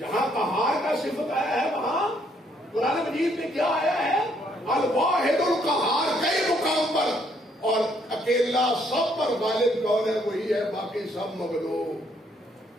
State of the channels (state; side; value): normal; both; correlation 0.69